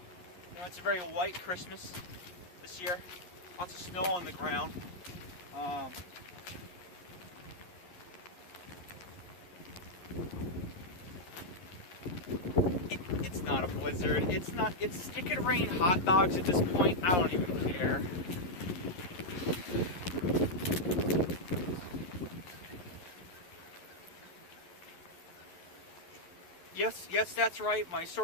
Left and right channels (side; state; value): right; late; 11 ms